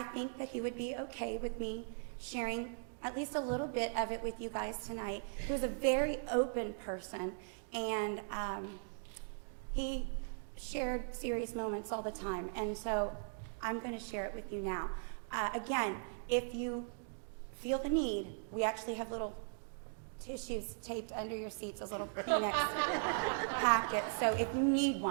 think that he would be okay with me sharing at least a little bit of it with you guys tonight. He was a very open person, and he shared serious moments all the time. And so I'm going to share it with you now. Again, if you feel the need, we actually have little tissues taped under your seats, those little Kleenex packets. So if you need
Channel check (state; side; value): silent; left; digital silence